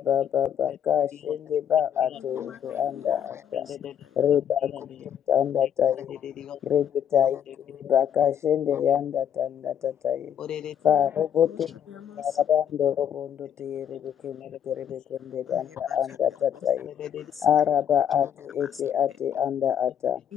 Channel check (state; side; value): quieter; right; 9.0 dB